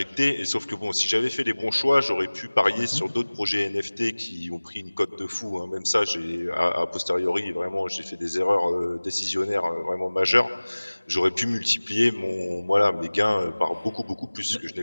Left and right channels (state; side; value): inverted; both; correlation -1.00